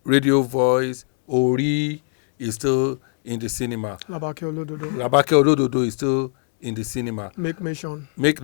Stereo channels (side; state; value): right; silent; digital silence